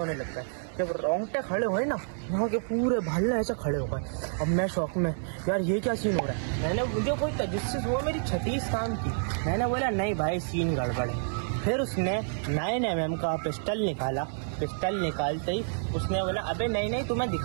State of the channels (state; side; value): silent; left; 59 dB below the other